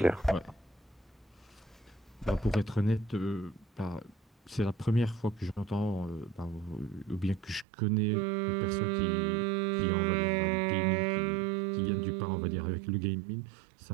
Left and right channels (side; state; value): left; drops out; at 7.7 s